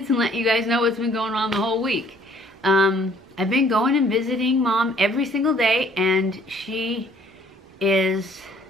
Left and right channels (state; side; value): normal; both; correlation 0.59